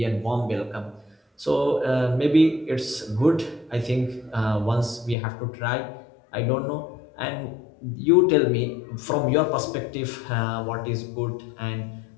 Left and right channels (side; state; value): right; drops out; at 5.2 s